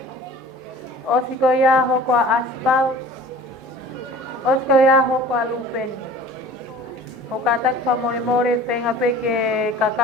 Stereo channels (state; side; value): normal; both; correlation 0.44